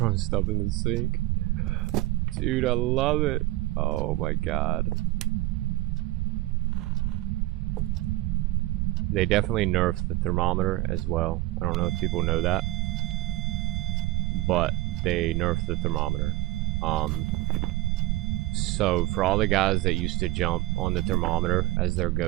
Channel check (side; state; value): left; quieter; 18.3 dB